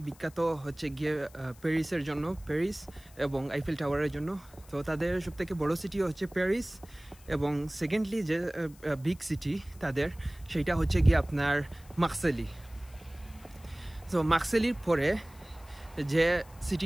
বিখ্যাত হচ্ছে গিয়ে প্যারিসের জন্য, প্যারিস এবং আইফেল টাওয়ারের জন্য। তো তাদের সবথেকে বড় সিটি হচ্ছে প্যারিস, এবং সেকেন্ডলি যে বিগ সিটি তাদের, সেইটা হচ্ছে গিয়ে আপনার মার্সেলি। তো মার্সেলির পরে যে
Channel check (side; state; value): left; noise; hiss, 25 dB below the sound